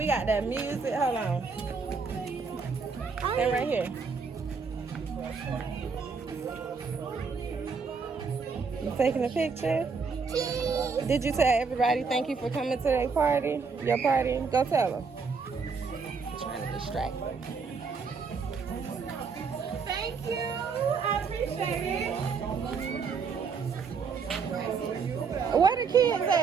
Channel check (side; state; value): left; quieter; 5.2 dB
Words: got that music. Hold on. Stay right here. You taking a picture? Did you tell everybody thank you for coming to their party? Your party? Go tell them. I'm trying to distract them. Thank you. I appreciate it. Where the kids